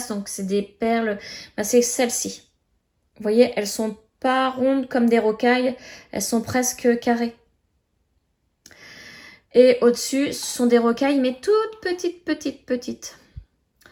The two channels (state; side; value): identical; both; correlation 1.00